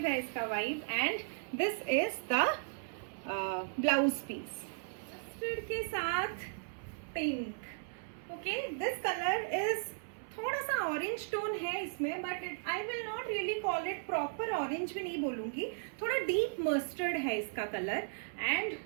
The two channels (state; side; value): silent; left; 54 dB below the other